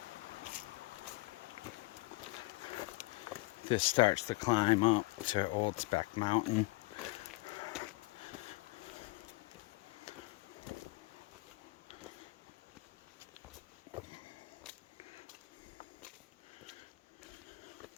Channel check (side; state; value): right; quieter; 22.5 dB